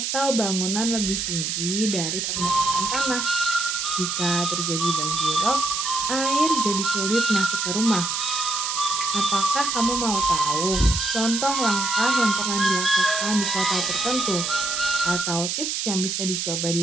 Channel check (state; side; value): noise; right; hiss, 1 dB below the sound